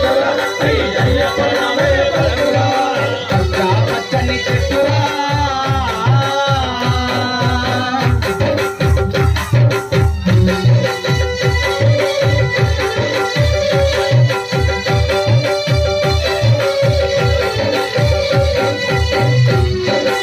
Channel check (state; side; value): identical; both; correlation 1.00